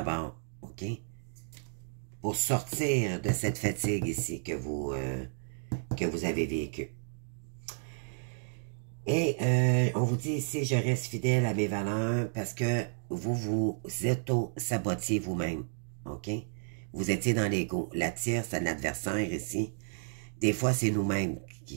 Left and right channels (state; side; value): silent; left; digital silence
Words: OK? Pour sortir de cette fatigue ici que vous avez vécue. Et on vous dit ici, je reste fidèle à mes valeurs parce que vous auto-sabotiez vous-même, OK? Vous étiez dans l'ego. La tierce, c'est l'adversaire ici. Des fois, c'est nous-mêmes